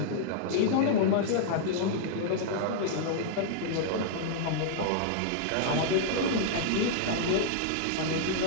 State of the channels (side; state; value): both; different; correlation -0.01